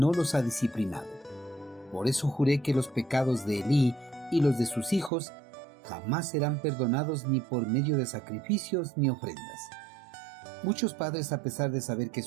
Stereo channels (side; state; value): left; drops out; at 5.1 s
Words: los ha disciplinado. Por eso juré que los pecados de Elí y los de sus hijos jamás serán perdonados ni por medio de sacrificios ni ofrendas. Muchos padres, a pesar de saber que